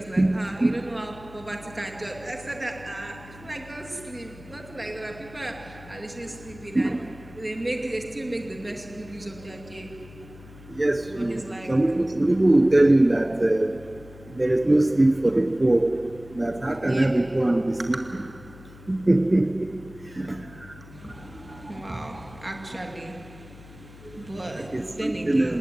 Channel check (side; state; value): left; noise; hum, 20 dB below the sound